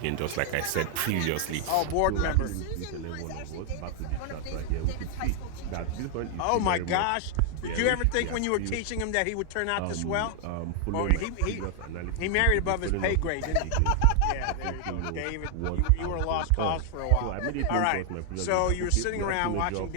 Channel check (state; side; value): different; both; correlation 0.00